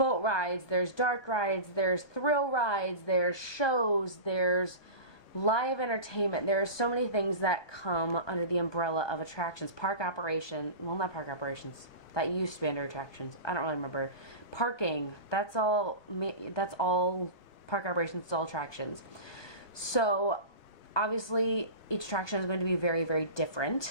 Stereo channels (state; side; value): late; right; 1.2 ms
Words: rides, there's dark rides, there's thrill rides, there's shows, there's live entertainment. There are so many things that come under the umbrella of attractions. Park operation, well, not park operations. That used to be under attractions. I don't really remember. Parking, that's all park operations, it's all attractions. So obviously each attraction is going to be very, very